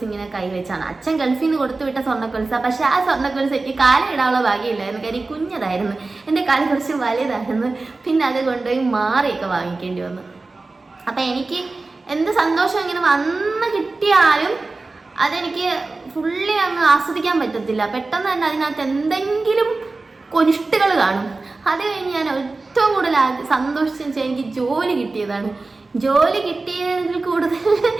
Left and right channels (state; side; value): quieter; left; 3.5 dB